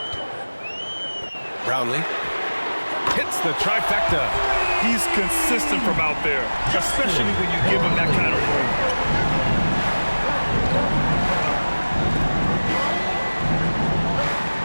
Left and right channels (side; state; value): both; inverted; correlation -1.00